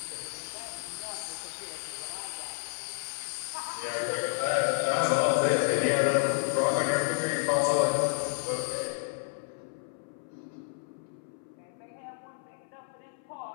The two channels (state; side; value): silent; right; 57 dB below the other